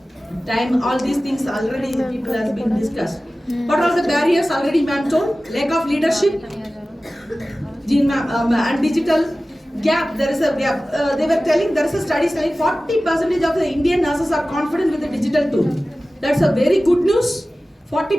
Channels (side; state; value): both; normal; correlation 0.96